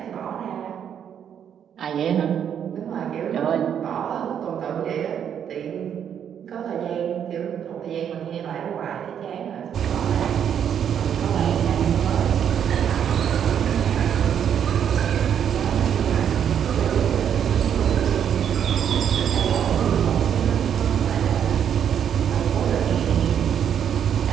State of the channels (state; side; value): quieter; left; 8.7 dB